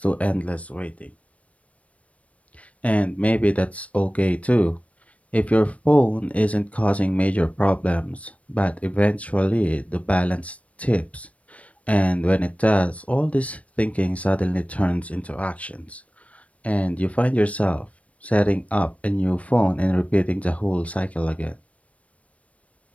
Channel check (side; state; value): right; late; 0.065 ms